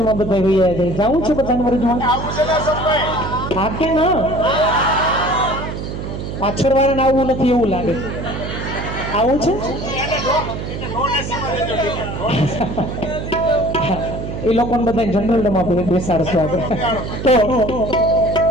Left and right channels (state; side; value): noise; right; hum, 6 dB below the sound